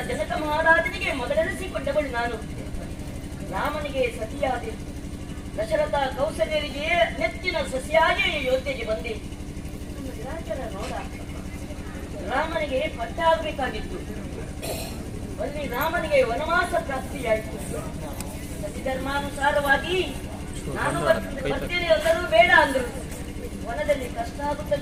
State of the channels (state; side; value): identical; both; correlation 1.00